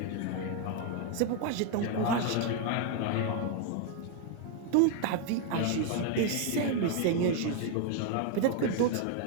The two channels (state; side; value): different; both; correlation 0.00